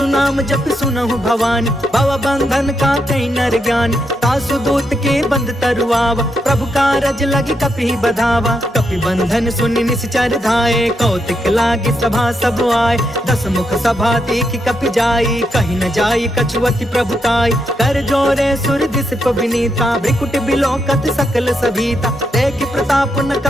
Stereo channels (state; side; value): normal; both; correlation 0.81